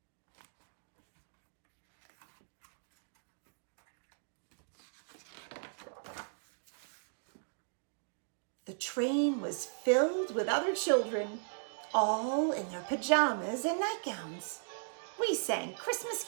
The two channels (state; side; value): silent; left; digital silence